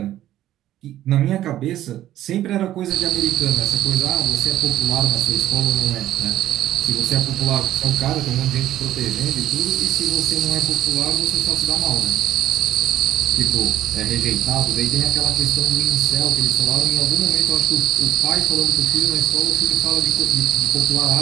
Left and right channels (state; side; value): quieter; left; 13.1 dB